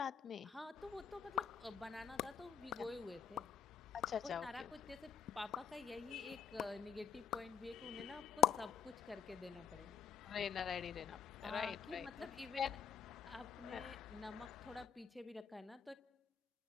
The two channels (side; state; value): right; quieter; 7.8 dB